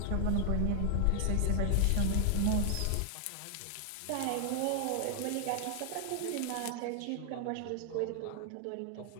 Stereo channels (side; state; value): both; different; correlation 0.00